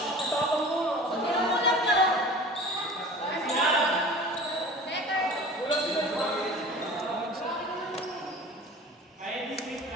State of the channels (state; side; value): normal; both; correlation 0.40